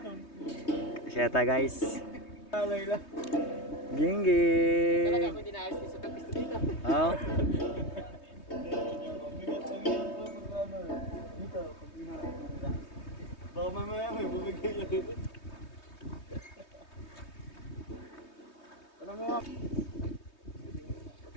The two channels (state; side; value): late; right; 3.2 ms